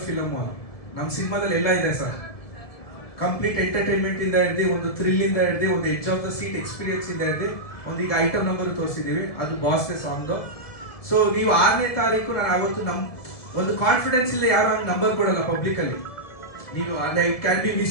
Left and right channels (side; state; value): right; late; 1.7 ms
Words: ಫಿಲಮ್. ನಮ್ಮ ಸಿನಿಮಾದಲ್ಲಿ ಎಲ್ಲ ಇದೆ ಸರ್. ಕಂಪ್ಲೀಟ್ ಎಂಟರ್ಟೈನ್ಮೆಂಟ್ ಇಂದ ಹಿಡ್ದು, ಒಂದು ಥ್ರಿಲ್ ಇಂದ ಹಿಡ್ದು, ಒಂದು edge of the seat experience ಇಂದ ಹಿಡ್ದು, ಒಂದು ಈಗ ಐಟಮ್ ನಂಬರ್ ತೋರಿಸಿದೀವಿ, ಅದು ಬಾಸ್ ಸಾಂಗ್. ಸೊ ನೀವು 6ನೇ ತಾರೀಕು, ನಾನು ಅವತ್ತು ಒಂದು ಕಾನ್ಫಿಡೆನ್ಸ್ ಇಲ್ಲ, ಯಾರು ಹಂಗೆ ನಂಬರ್ ಕೊಡಲ್ಲ ಪಬ್ಲಿಕ್ ಅಲ್ಲಿ. ನೀವು ಅದೇ it can be